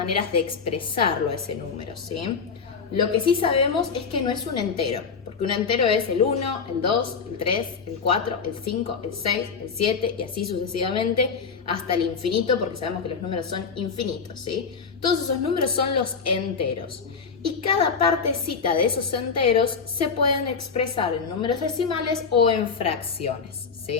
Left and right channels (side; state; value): right; quieter; 5.6 dB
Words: de expresarlo ese número, ¿sí? Lo que sí sabemos es que no es un entero, porque un entero es el 1, el 2, el 3, el 4, el 5, el 6, el 7 y así sucesivamente hasta el infinito, porque sabemos que los números son infinitos, ¿sí? Todos esos números son los enteros. Y cada partecita de esos enteros se pueden expresar en números decimales o en fracciones,